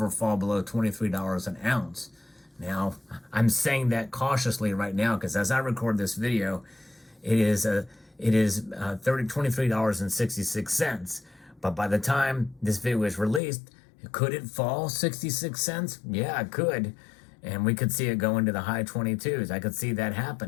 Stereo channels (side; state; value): right; drops out; at 13.4 s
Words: fall below $23 an ounce. Now, I'm saying that cautiously right now because as I record this video, it is $23.66. But by the time this video is released, could it fall 66 cents? Yeah, it could. And we could see it go into the high 22s. I could see that